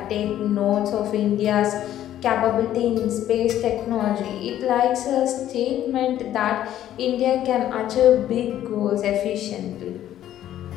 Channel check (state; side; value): quieter; right; 12.0 dB